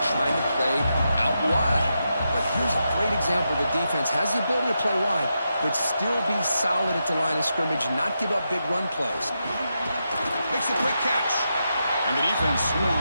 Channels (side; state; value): both; inverted; correlation -0.86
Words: trying to play out wide. But here's a great example. The defense has the ability to play wide, but still be solid at the line of scrimmage, not give up big run plays. Makes a quick catch. And the defense